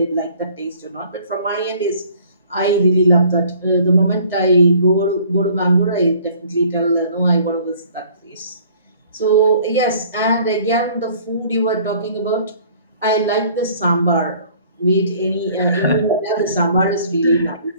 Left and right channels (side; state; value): both; inverted; correlation -0.55